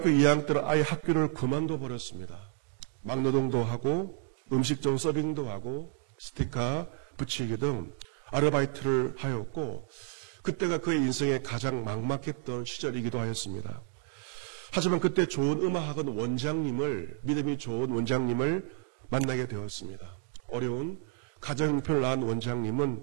2학년 때는 아예 학교를 그만둬 버렸습니다. 막노동도 하고 음식점 서빙도 하고 스티커 붙이기 등 아르바이트를 하였고 그때가 그의 인생에 가장 막막했던 시절이기도 하였습니다. 하지만 그때 좋은 음악학원 원장님을, 믿음이 좋은 원장님을 만나게 되었습니다. 어려운 가정형편을 낳은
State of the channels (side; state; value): left; silent; digital silence